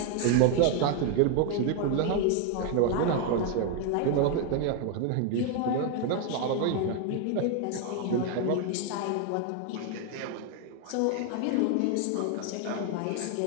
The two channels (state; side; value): different; both; correlation 0.01